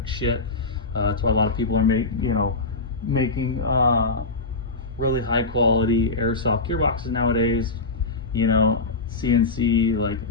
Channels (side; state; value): right; quieter; 3.5 dB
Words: shit. That's why a lot of people are making really high quality airsoft gearboxes nowadays. You know, CNC, like,